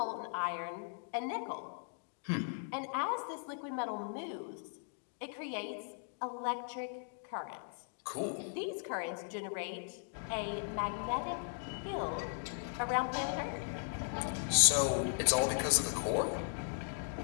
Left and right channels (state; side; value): silent; right; digital silence